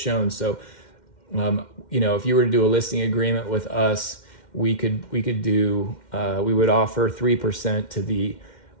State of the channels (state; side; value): late; right; 2.1 ms